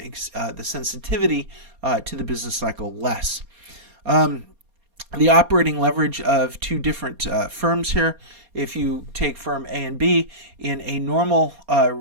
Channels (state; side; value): late; left; 4.2 ms